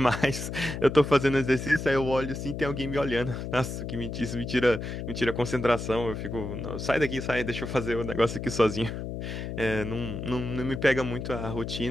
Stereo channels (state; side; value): noise; left; hum, 6 dB below the sound